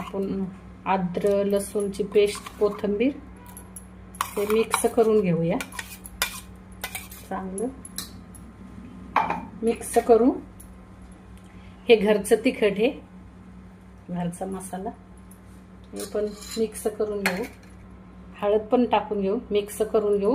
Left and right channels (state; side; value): identical; both; correlation 1.00